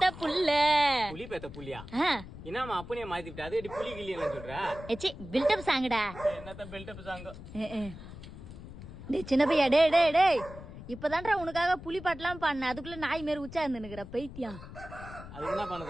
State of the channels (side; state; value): left; noise; rumble, 13 dB below the sound